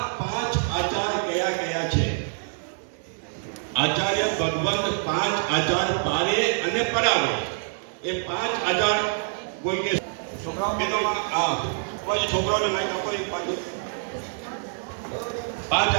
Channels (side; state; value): left; silent; digital silence